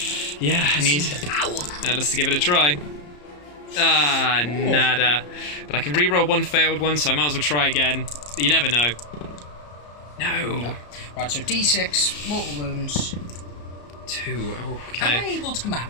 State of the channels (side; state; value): right; late; 34 ms